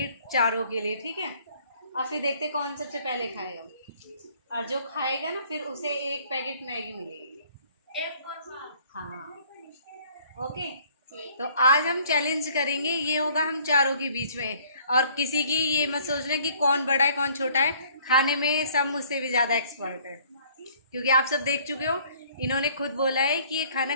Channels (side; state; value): both; inverted; correlation -0.58